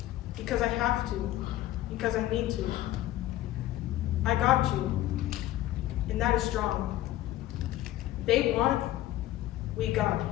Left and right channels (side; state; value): right; quieter; 14.7 dB